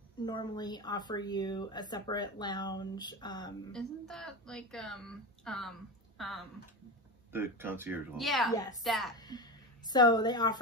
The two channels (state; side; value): normal; both; correlation 0.21